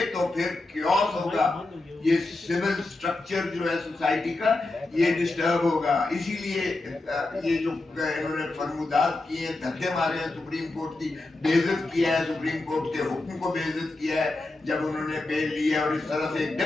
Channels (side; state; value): right; quieter; 3.0 dB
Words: तो फिर क्योस होगा, ये सिविल स्ट्रक्चर जो है सोसाइटी का ये डिस्टर्ब होगा। इसीलिए ये जो इन्होंने फरमुदात किए हैं, धक्के मारे हैं, सुप्रीम कोर्ट की बेइज्जत किया है, सुप्रीम कोर्ट के हुक्म को बेइज्जत किया है जब उन्होंने बेल ली है। और इस तरह से